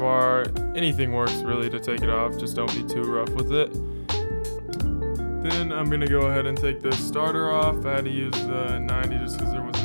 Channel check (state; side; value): inverted; both; correlation -1.00